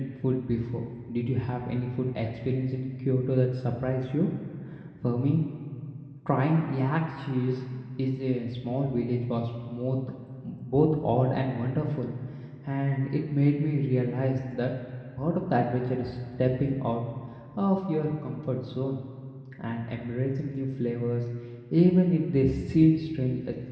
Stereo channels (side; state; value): both; identical; correlation 1.00